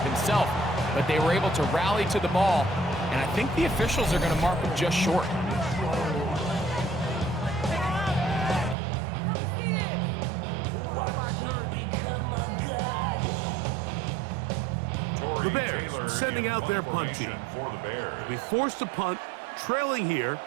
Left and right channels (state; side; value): drops out; left; at 8.8 s